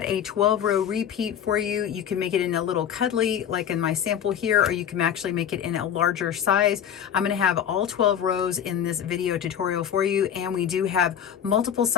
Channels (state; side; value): quieter; right; 9.0 dB